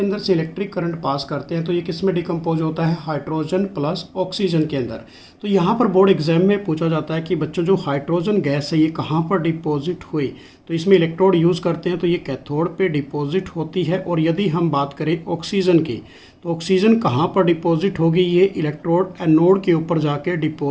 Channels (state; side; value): identical; both; correlation 1.00